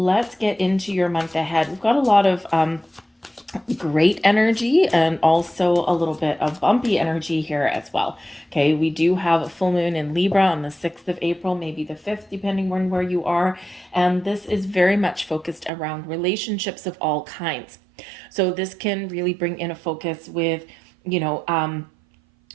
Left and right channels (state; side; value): drops out; left; at 15.7 s